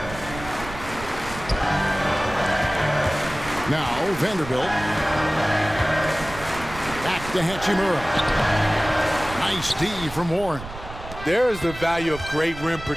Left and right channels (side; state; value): right; noise; rumble, 13 dB below the sound